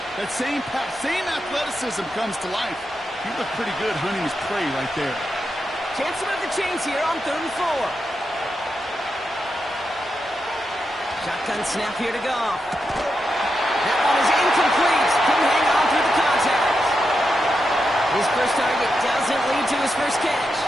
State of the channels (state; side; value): normal; both; correlation 0.87